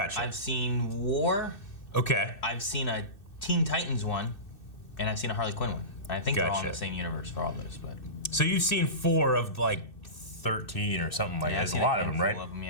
I've seen War. Okay. I've seen a Teen Titans one. And I've seen a Harley Quinn one. I think they're all in Gotcha. the same universe for all those, but... So you've seen 4 of like 13 or something like that. There's a lot of them, right? All of them,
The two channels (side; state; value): right; late; 2.6 ms